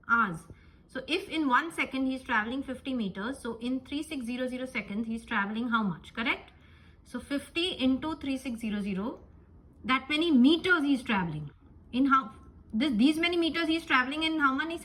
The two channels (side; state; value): both; identical; correlation 1.00